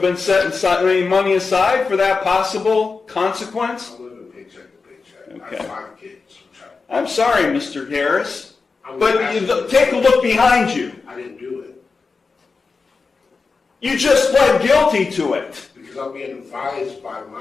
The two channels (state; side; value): quieter; right; 4.5 dB